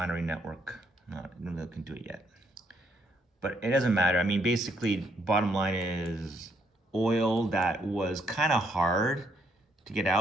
network. I don't know if they can do it yet. But it doesn't matter. I mean, basically, bottom line is oil that was kind of hard to get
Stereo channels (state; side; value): normal; both; correlation 0.72